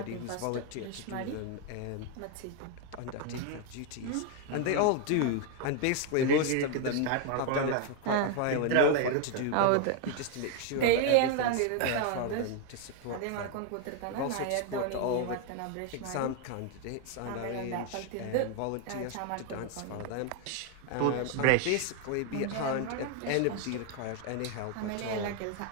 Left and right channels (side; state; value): both; different; correlation 0.01